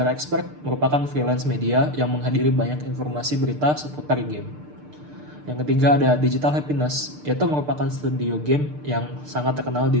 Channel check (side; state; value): left; late; 6.7 ms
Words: Expert, merupakan freelance media yang menghadiri banyak informasi berita seputar game. Yang ketiga ada Digital Happiness, yaitu merupakan studio game yang sangat terkenal di